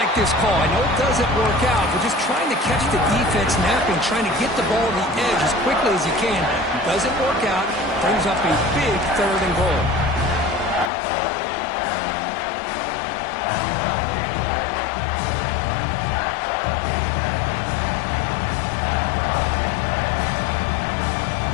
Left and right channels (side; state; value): right; drops out; at 10.9 s